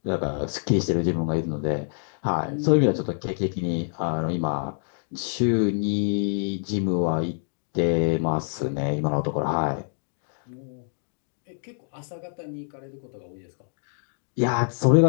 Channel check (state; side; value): silent; right; digital silence